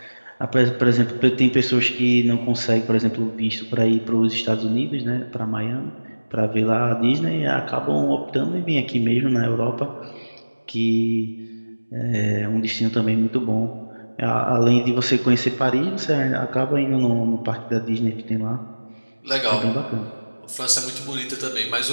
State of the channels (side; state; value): both; inverted; correlation -1.00